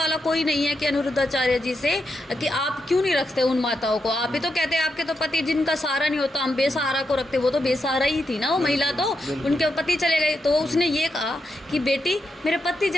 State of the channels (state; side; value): normal; both; correlation 0.84